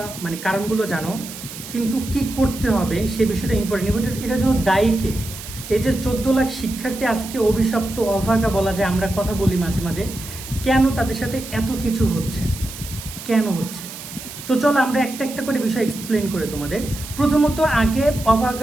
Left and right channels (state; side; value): noise; right; hiss, 12 dB below the sound